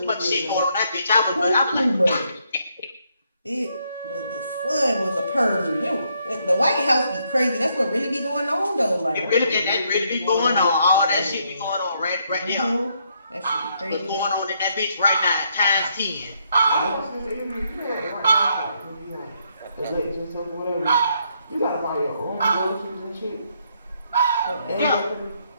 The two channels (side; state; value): both; inverted; correlation -0.74